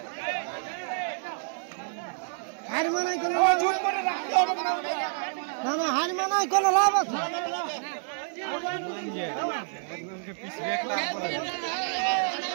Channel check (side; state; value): left; silent; 59 dB below the other